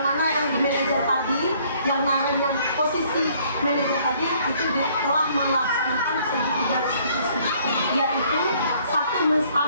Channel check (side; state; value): both; inverted; correlation -0.62